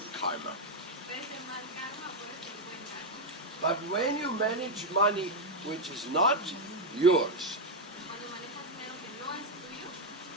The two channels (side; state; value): both; normal; correlation 0.02